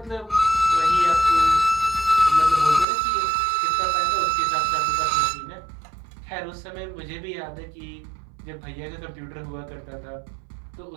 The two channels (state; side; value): drops out; left; at 2.9 s